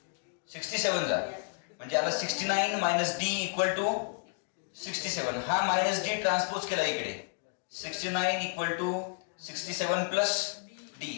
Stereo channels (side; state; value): right; silent; digital silence